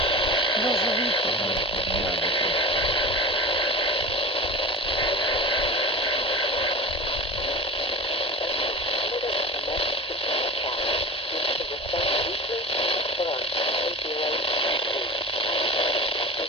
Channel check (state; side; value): normal; both; correlation 0.31